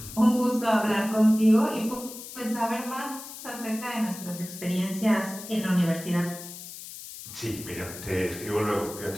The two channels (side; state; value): left; noise; hiss, 12 dB below the sound